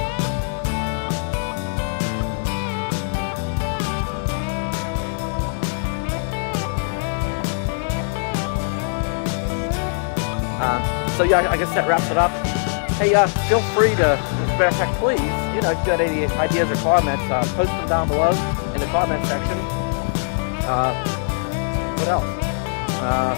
So yeah, I guess that wraps it up. Hey, feel free to, as a matter of fact, please, if you've got any ideas or comments, post them down below in the comment section. What else?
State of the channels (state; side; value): silent; right; 64 dB below the other